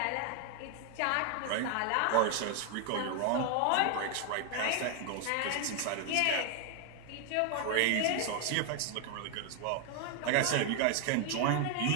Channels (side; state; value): both; different; correlation 0.00